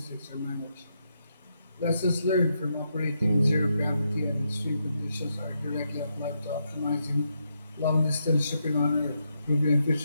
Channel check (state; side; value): inverted; both; correlation -0.81